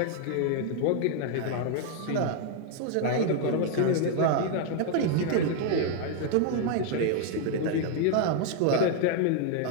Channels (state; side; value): different; both; correlation 0.00